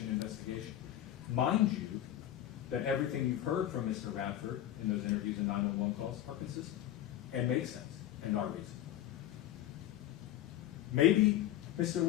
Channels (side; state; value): right; quieter; 12.5 dB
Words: investigation. Mind you, that everything you've heard from Mr. Radford in those interviews and 911 calls are consistent and make sense and are reasonable. Maybe Mr.